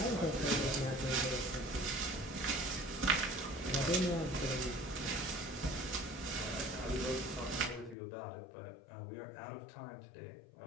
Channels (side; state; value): right; drops out; at 8.0 s